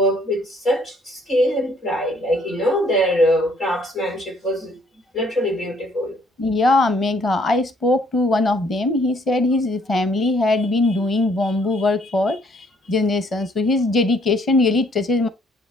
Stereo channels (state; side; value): normal; both; correlation 0.64